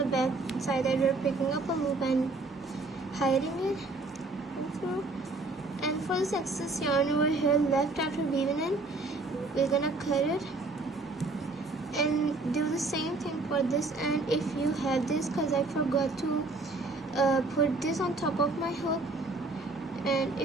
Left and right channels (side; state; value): left; quieter; 3.3 dB